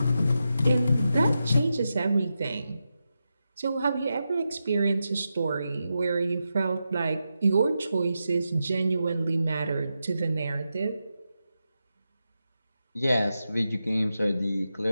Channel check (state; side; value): inverted; both; correlation -0.88